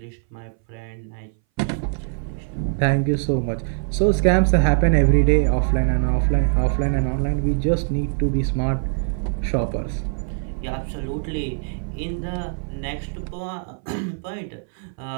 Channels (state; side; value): silent; left; 61 dB below the other